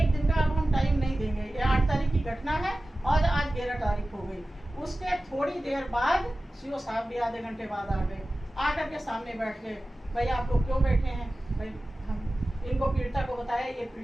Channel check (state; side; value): normal; both; correlation 0.96